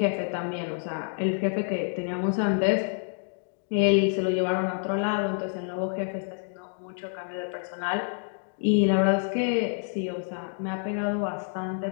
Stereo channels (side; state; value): right; silent; 59 dB below the other